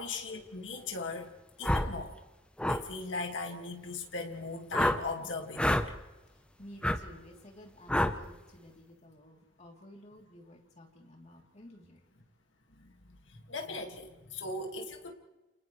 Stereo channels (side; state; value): both; normal; correlation 0.67